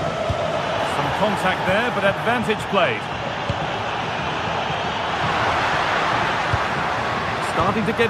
Some contact there, but advantage played. Starting to get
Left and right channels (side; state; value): both; identical; correlation 1.00